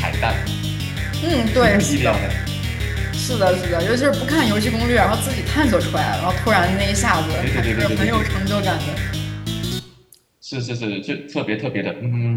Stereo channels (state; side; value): identical; both; correlation 1.00